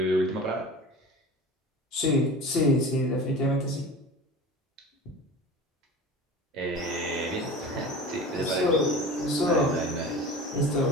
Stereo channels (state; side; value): normal; both; correlation 0.36